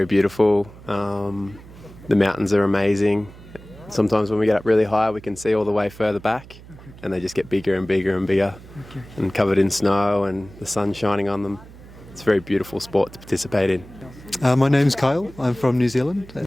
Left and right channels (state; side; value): noise; right; hum, 19 dB below the sound